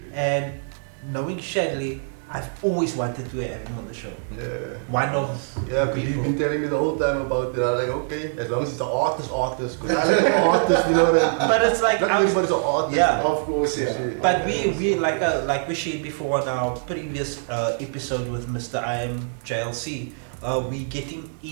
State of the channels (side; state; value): left; silent; 60 dB below the other